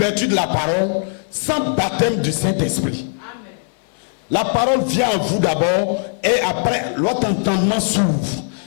de la parole, sans baptême du Saint-Esprit. La parole vient à vous d'abord et après votre entendement s'ouvre.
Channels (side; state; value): right; silent; 58 dB below the other